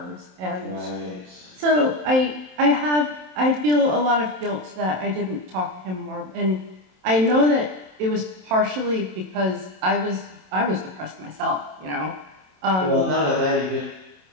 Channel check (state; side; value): late; left; 27 ms